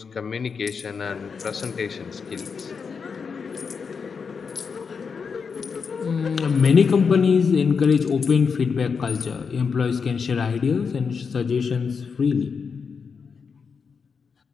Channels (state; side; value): quieter; right; 5.7 dB